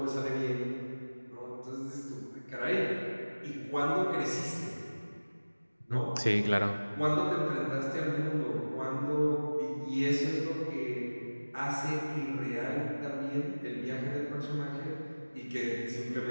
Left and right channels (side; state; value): both; inverted; correlation -1.00